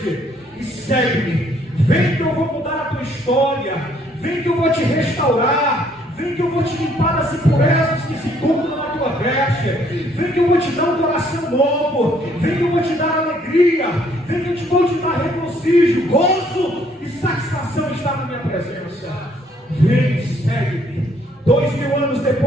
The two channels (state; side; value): normal; both; correlation 0.65